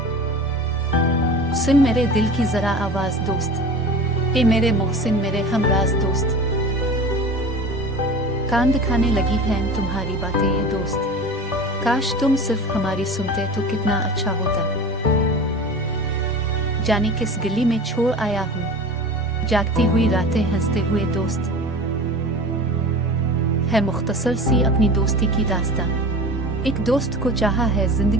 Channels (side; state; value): both; normal; correlation 0.35